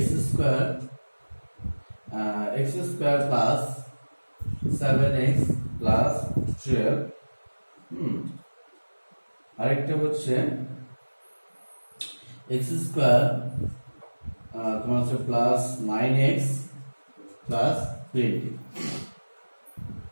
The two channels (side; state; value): both; inverted; correlation -1.00